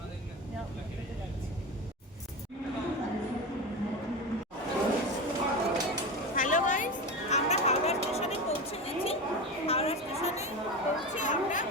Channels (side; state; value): both; normal; correlation 0.23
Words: মেট্রোতে যাচ্ছি। হ্যালো গাইস, আমরা হাওড়া স্টেশনে পৌঁছে গেছি। হাওড়া স্টেশনে পৌঁছে আমরা